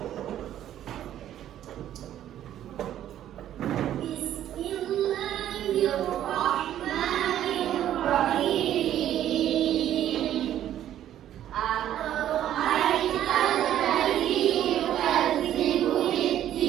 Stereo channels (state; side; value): quieter; left; 11.6 dB